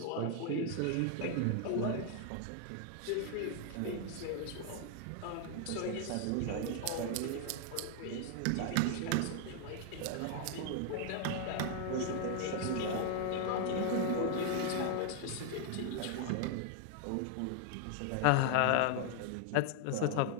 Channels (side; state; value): both; different; correlation 0.00